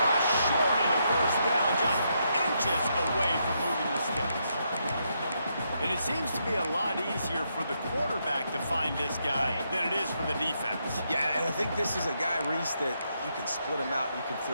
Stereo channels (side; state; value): both; inverted; correlation -0.79